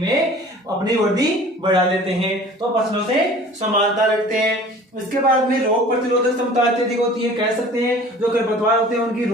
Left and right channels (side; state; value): both; normal; correlation 0.46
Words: वृद्धि बढ़ा लेते हैं। तो फसलों से समानता रखते हैं। इसके बाद में रोग प्रतिरोधक क्षमता अत्यधिक होती है। कह सकते हैं जो खरपतवार होते हैं उनकी